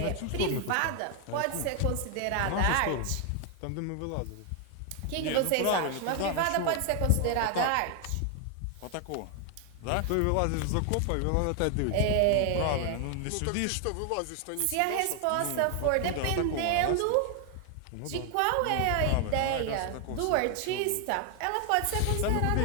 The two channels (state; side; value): different; both; correlation 0.00